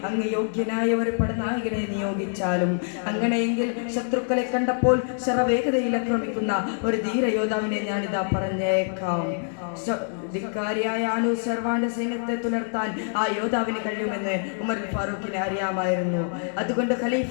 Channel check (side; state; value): right; silent; 61 dB below the other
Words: അങ്ങ് യോഗ്യനായ ഒരു പടനായകനെ നിയോഗിച്ചാലും. അങ്ങനെയെങ്കിൽ ശത്രുക്കളെ കണ്ടപ്പോൾ ശരവേഗതയിൽ ആക്രമിക്കുന്ന ഒരു ധീരയോദ്ധാവിനെ ഞാനിതാ പറഞ്ഞേക്കാം. ധിക്കാരിയായ അനുസർവാന്റെ സൈന്യത്തെ തുലർത്താൻ ആ യോദ്ധാവിന് കഴിയുമെന്ന് ഉമറുൽ ഫാറൂഖിനെ അറിയാമായിരുന്നു. അതുകൊണ്ട് ഖലീഫ